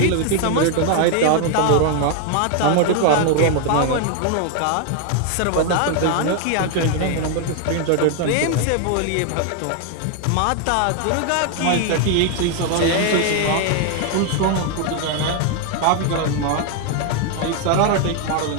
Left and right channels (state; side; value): different; both; correlation 0.01